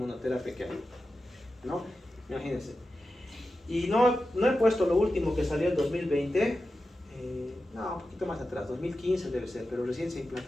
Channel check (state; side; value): normal; both; correlation 0.92